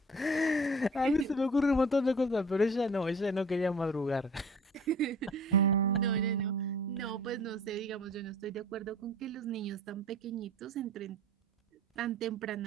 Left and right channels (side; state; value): both; normal; correlation 0.45